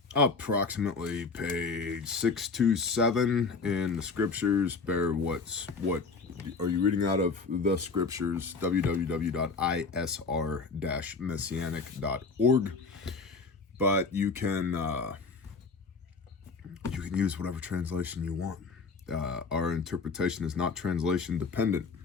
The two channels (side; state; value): right; quieter; 4.4 dB